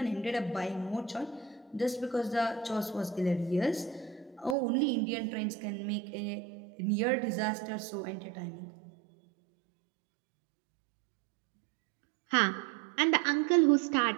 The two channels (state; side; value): drops out; left; at 4.5 s